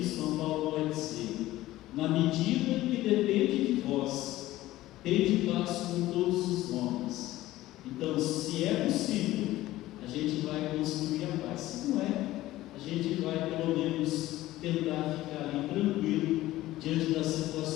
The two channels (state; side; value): quieter; right; 16.1 dB